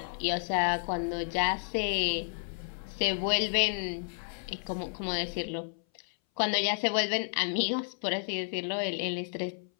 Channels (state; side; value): silent; right; 57 dB below the other